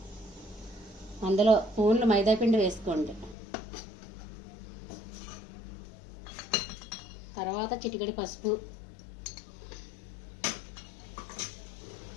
అందులో స్పూన్లు మైదాపిండి వేసుకోండి. తర్వాత చిటికెడు పసుపు,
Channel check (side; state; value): right; drops out; at 3.4 s